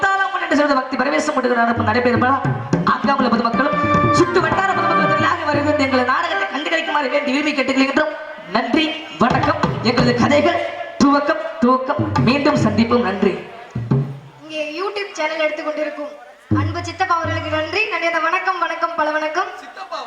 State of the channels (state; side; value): identical; both; correlation 1.00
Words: என்று சொல்வது பக்தி பரவேசம் நடப்பு நடைபெறும்பா ஆக்காமல பொதுமக்களும் சுட்டு வட்டார பொதுமக்களும் வருகிறது எங்கள் நாடகத்தை கண்டுகளிக்குமாறு வேண்டி விரும்பி கேட்டுக்கொள்கின்றோம் நன்றி வணக்கம் எங்களது கதைகள் துவக்கம் துவக்கம் மீண்டும் சந்திப்போம் நன்றி இங்கே யூடியூப் சேனல் எடுத்துக்கொண்டிருக்கும் அன்பு சித்தப்பா அவர்களுக்கு நன்றி நன்றி. அந்த வணக்கம் வணக்கம் பல வணக்கம்.